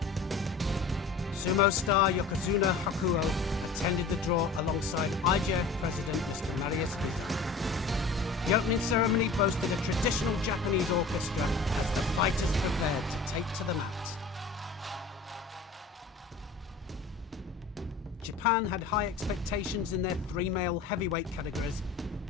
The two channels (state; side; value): quieter; right; 4.1 dB